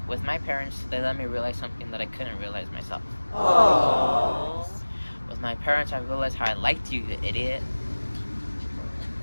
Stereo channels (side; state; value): both; inverted; correlation -1.00